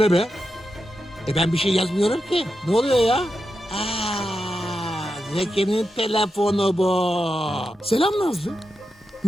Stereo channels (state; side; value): normal; both; correlation 0.88